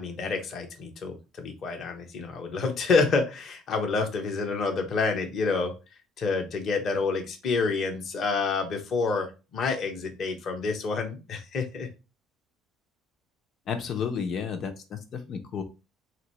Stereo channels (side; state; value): right; quieter; 4.1 dB